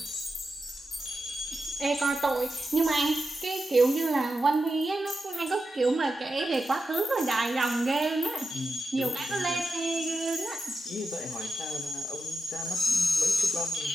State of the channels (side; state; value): both; normal; correlation 0.89